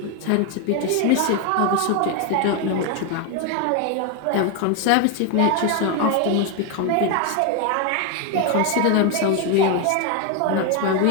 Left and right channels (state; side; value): different; both; correlation 0.01